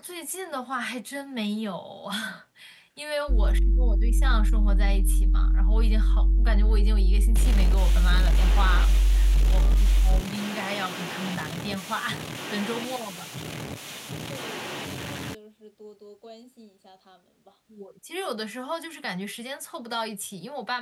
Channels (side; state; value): both; identical; correlation 1.00